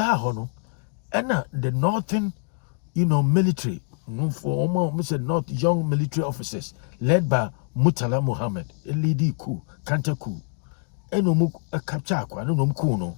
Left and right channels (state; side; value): quieter; right; 40.0 dB